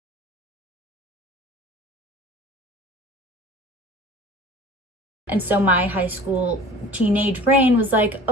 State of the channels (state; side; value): normal; both; correlation 0.42